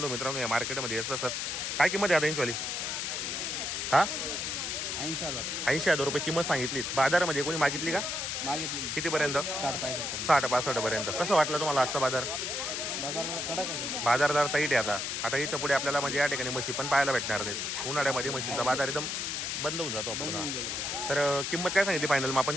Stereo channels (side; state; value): left; noise; hiss, 2 dB below the sound